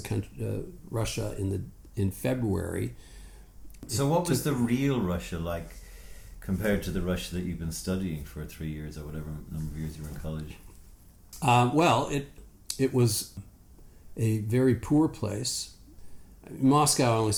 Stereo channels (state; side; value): identical; both; correlation 1.00